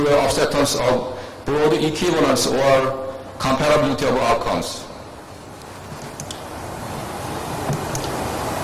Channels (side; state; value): both; identical; correlation 1.00